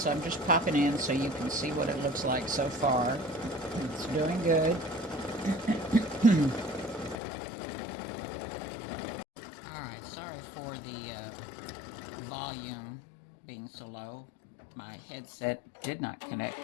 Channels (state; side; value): drops out; right; at 7.2 s